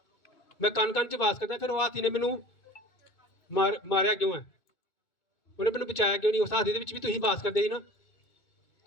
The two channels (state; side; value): late; right; 2.2 ms